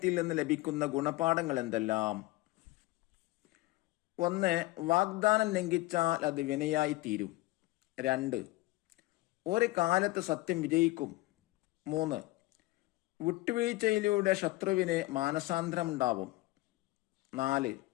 നിന്ന് ലഭിക്കുന്ന ഗുണപാഠങ്ങൾ എന്തെല്ലാം? 1. വാഗ്ദാനം ലംഘിച്ചാൽ അത് വിനയായി തീരും. 2. ഒരു കാലത്ത് സത്യം വിജയിക്കും. 3. വിട്ടുവീഴ്ചയിലൂടെ ശത്രുവിന് മാനസാന്തരമുണ്ടാവും. 4.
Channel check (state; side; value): quieter; right; 19.4 dB